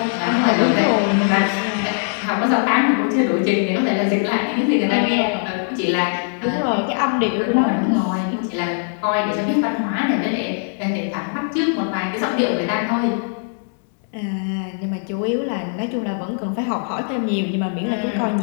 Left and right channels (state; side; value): silent; right; 65 dB below the other